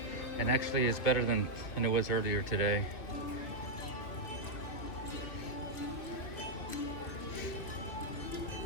and actually it's better than it was earlier today.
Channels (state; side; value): late; right; 3.1 ms